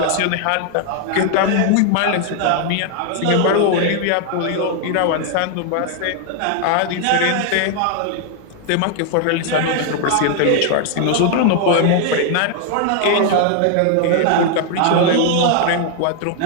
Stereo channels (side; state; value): both; different; correlation 0.00